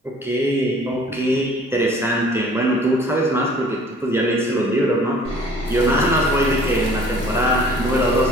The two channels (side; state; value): both; normal; correlation 0.52